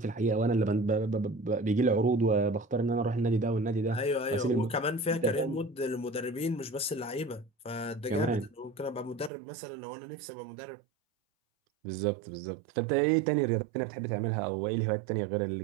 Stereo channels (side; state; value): left; drops out; at 9.3 s